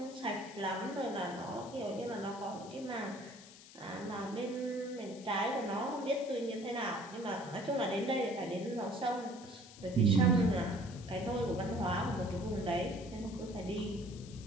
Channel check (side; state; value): left; noise; hiss, 19 dB below the sound